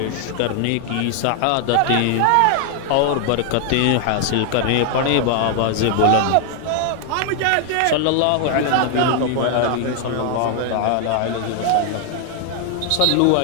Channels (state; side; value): different; both; correlation 0.00